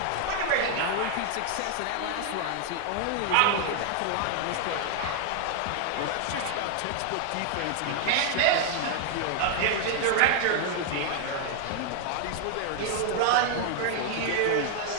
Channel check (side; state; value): both; different; correlation 0.00